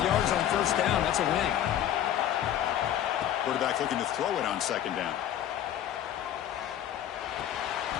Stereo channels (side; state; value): right; quieter; 11.1 dB